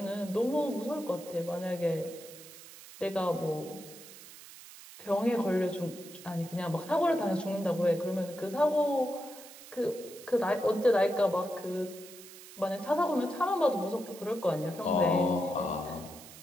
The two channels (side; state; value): right; noise; hiss, 17 dB below the sound